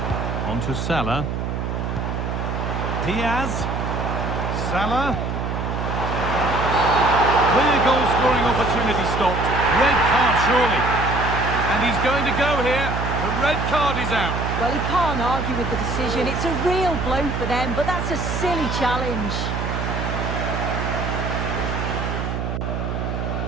On to Salah. Diaz. Salah. Clear goal-scoring opportunity stopped. Red card, surely. And he's going to go here. The red card is out. Well, he can't argue with the decision. It's a real blow for them, but that's a silly challenge.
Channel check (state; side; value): noise; right; hum, 2 dB below the sound